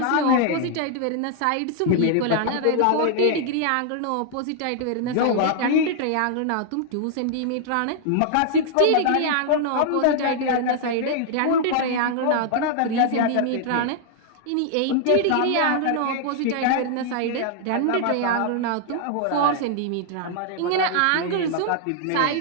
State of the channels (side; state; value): both; different; correlation -0.01